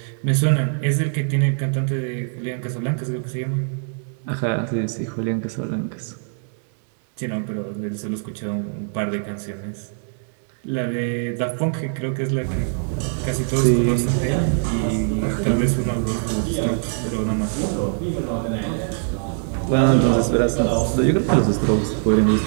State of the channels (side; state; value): left; silent; digital silence